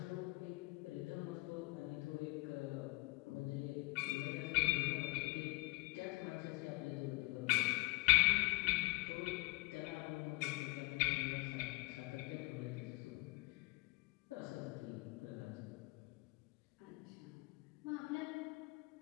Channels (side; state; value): right; quieter; 25.9 dB